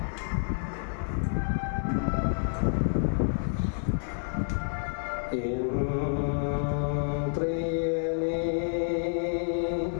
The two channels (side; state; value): right; silent; 59 dB below the other